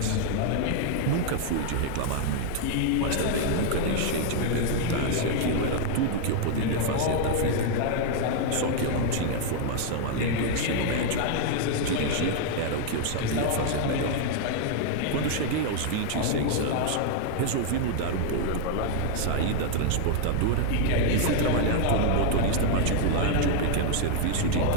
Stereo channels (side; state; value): both; different; correlation 0.00